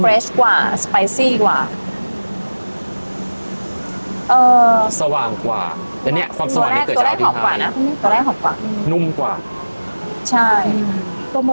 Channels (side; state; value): both; inverted; correlation -1.00